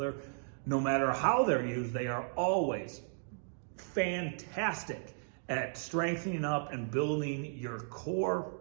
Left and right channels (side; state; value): left; silent; digital silence